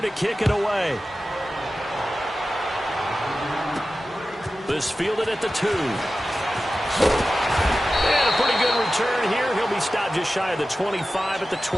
to kick it away. This fielded at the 2. And a pretty good return here. He'll be stopped just shy of the 25 at the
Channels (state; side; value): normal; both; correlation 0.94